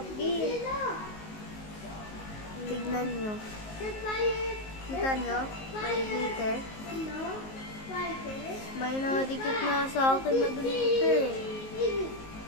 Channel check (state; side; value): late; right; 19 ms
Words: bee. Tignan nyo. Kita nyo? May glitter. May nakadikit na sa akin na glitter.